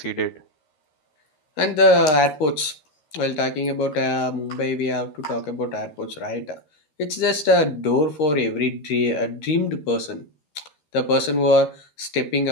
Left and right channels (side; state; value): right; late; 13 ms